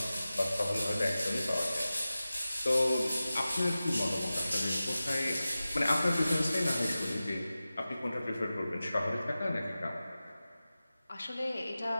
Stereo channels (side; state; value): both; inverted; correlation -0.95